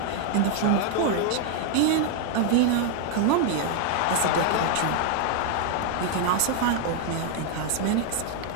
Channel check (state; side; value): different; both; correlation 0.00